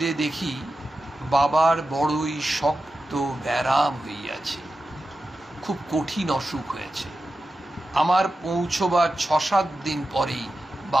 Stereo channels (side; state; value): both; normal; correlation 0.92